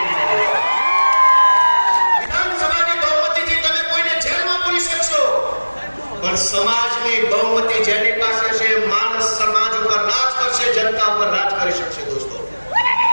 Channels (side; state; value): both; inverted; correlation -1.00